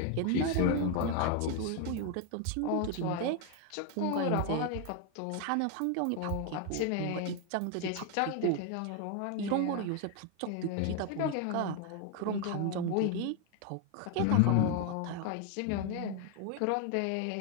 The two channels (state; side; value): different; both; correlation 0.01